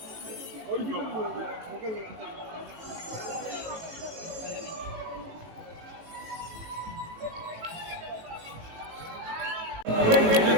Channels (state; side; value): late; left; 18 ms